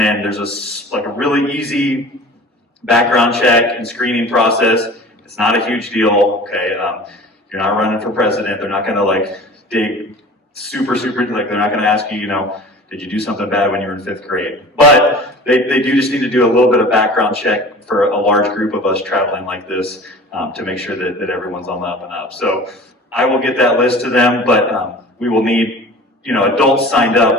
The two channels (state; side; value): normal; both; correlation 0.41